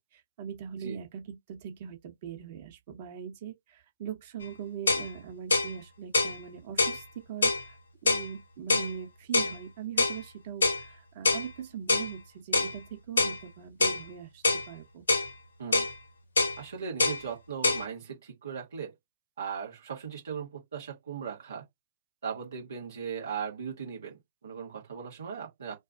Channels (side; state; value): both; inverted; correlation -0.80